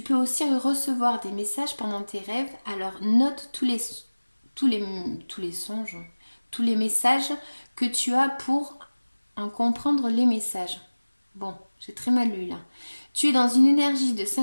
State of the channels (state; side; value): inverted; both; correlation -1.00